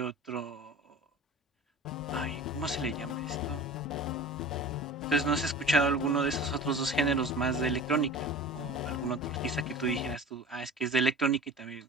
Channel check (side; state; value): both; normal; correlation 0.38